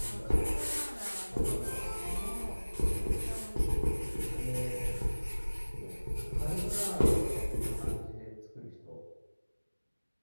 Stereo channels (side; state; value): both; inverted; correlation -1.00